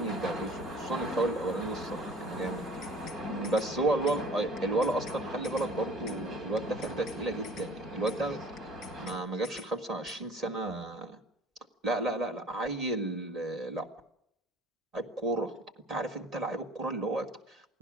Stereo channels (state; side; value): normal; both; correlation 0.48